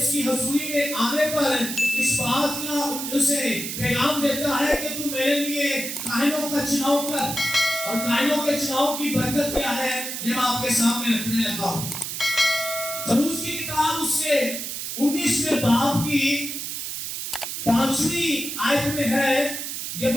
کی حضوری میں آنے پر اس بات کا اسے پیغام دیتا ہے کہ تم میرے لیے کاہنوں کا چناؤ کر، اور کاہنوں کے چناؤ کی برکت کیا ہے یہ میں آپ کے سامنے رکھنے لگا ہوں۔ خروج کی کتاب اس کے 19ویں باب کی 5ویں آیت میں ہے، یہ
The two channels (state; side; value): noise; right; hiss, 5 dB below the sound